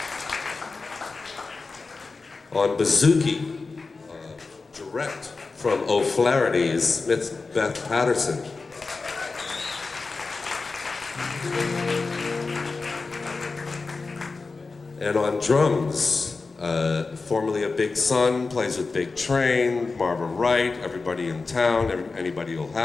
On bouzouki, direct from O'Flaherty's, Miss Beth Patterson. And on drums, formerly a Big Son, plays with Big Train, Marvin Wright, everybody in town, anybody will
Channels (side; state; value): right; quieter; 4.1 dB